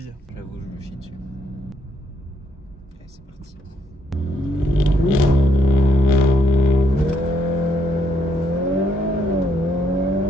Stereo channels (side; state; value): both; normal; correlation 0.73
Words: J'avoue, je me chie dessus. Allez, c'est parti.